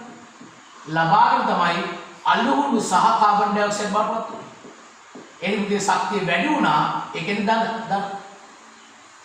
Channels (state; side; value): identical; both; correlation 1.00